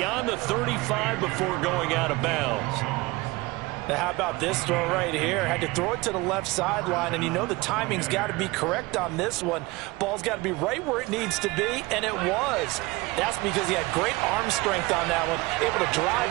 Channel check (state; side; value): quieter; left; 22.4 dB